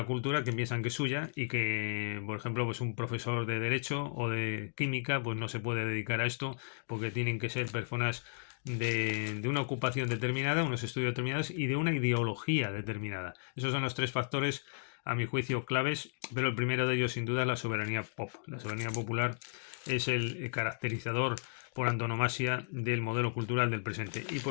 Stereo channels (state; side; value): silent; right; digital silence